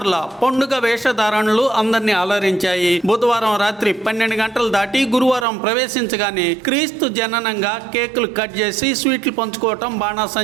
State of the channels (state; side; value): drops out; left; at 5.5 s